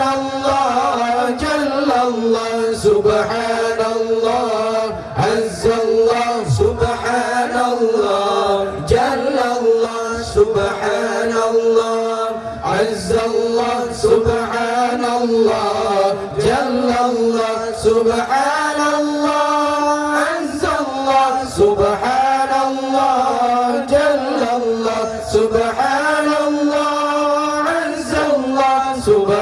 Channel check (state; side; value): identical; both; correlation 1.00